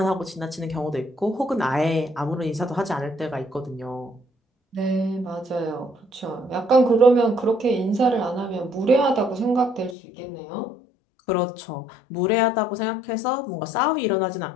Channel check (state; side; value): drops out; right; at 10.0 s